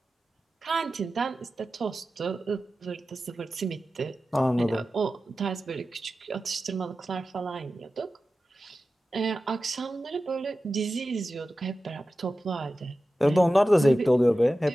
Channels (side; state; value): both; normal; correlation 0.94